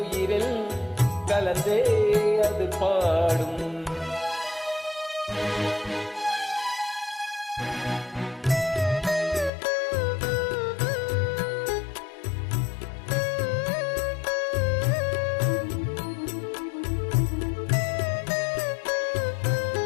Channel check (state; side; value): drops out; right; at 9.5 s